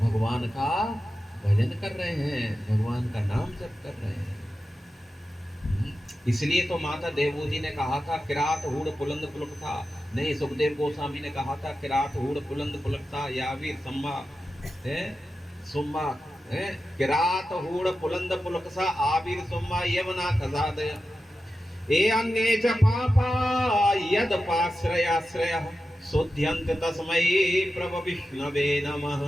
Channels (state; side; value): normal; both; correlation 0.92